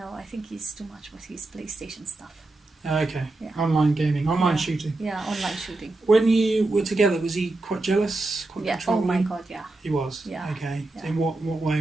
I think he's too much with his PlayStation stuff. Okay. Yeah. Online gaming, online shooting. Yeah, online shooting. When you were together, was he quite jealous? Quite Yeah. Oh controlling? my God, yeah. He was. Yeah. Okay. Yeah. So in what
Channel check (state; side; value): quieter; left; 3.0 dB